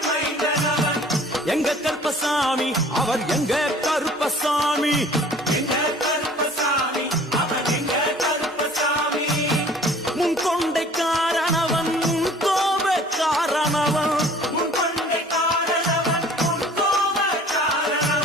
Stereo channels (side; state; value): both; normal; correlation 0.50